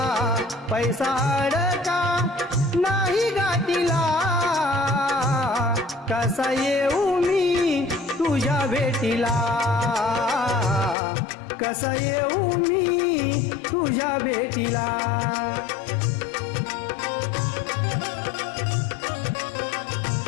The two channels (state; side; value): drops out; right; at 11.0 s